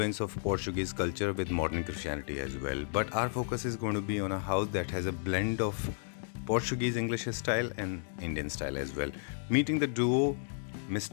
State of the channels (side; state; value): right; silent; digital silence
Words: of Portuguese culture with modern Christianity as well. But our focus is going to be on a house that has a blend of Portuguese English style and Indian style as well. Meeting the duo